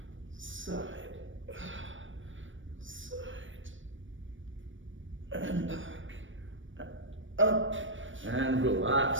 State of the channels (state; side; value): late; left; 0.56 ms